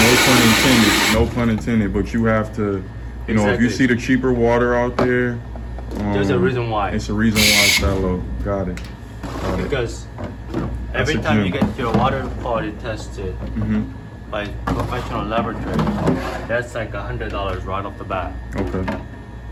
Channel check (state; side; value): identical; both; correlation 1.00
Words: No pun intended. But you have to, if you Exactly. see the cheaper water out there, There's a reason why. It's a reason why it's that low. Got it. Because That's every a time you gem. get your water quality tested Mm-hmm. by professional laboratory, that's like $100 right off the bat. Okay.